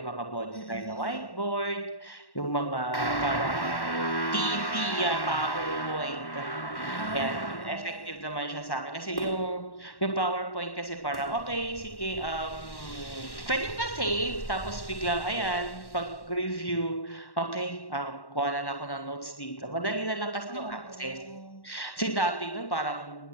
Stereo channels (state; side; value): late; right; 1.1 ms